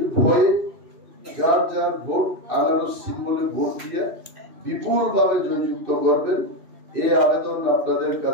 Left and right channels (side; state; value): left; late; 2.6 ms